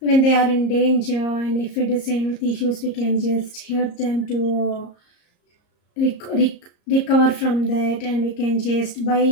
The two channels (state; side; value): late; right; 34 ms